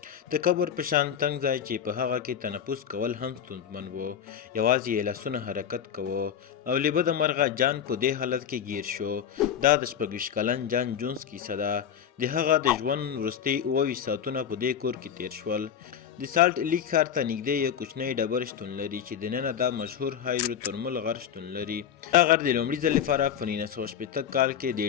د قبر په شان تنګ ځای چې په هغه کې تنفس کول هم ستونزمن و. یوازې یې لاسونه حرکت کوه او له بده مرغه جان په دې حالت کې ګیر شو. دا د 26 کلن جان جونز کیسه ده. د هغه د ژوند وروستي 28 ساعتونه په دې کور کې تیر شول. د سالټ لیک ښار ته نږدې یو کوچنی ډبر شتون لري چې دننه دا مشهور هایدروترمل غر شتون لري. دا غر د لومړي ځل لپاره په 1960 کال کې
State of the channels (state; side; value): quieter; right; 8.6 dB